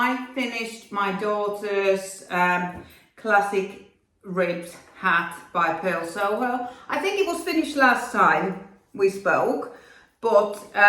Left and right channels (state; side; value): identical; both; correlation 1.00